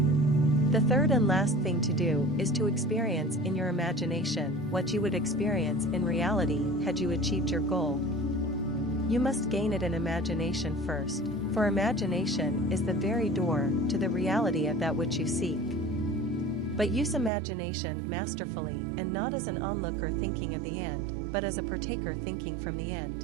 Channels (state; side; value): drops out; left; at 17.3 s